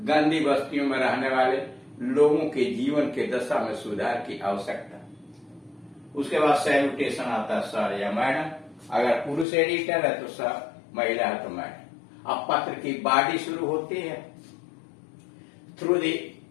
गंदी बस्तियों में रहने वाले लोगों के जीवन के दशा में सुधार की आवश्यकता। उसके बाद सैल्यूटेशन आता है सर या मैडम, अगर पुरुष एडिटर है तो सर, महिला है तो मैडम। अब पत्र की बॉडी शुरू होती है। Through the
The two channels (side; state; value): right; drops out; at 9.5 s